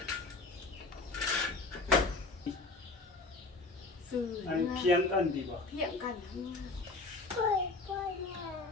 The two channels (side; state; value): right; quieter; 3.5 dB